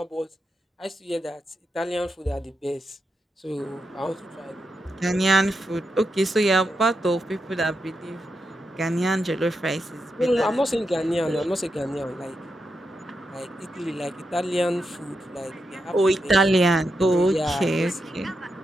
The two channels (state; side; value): normal; both; correlation 0.86